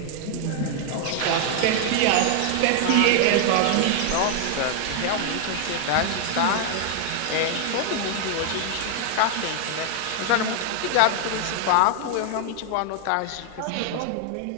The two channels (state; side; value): different; both; correlation 0.00